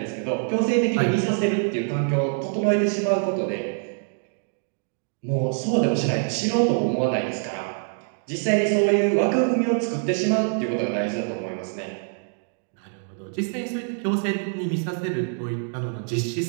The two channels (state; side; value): silent; left; 58 dB below the other